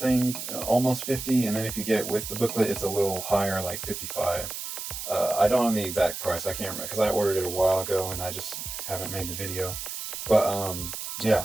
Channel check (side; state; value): right; noise; hiss, 7 dB below the sound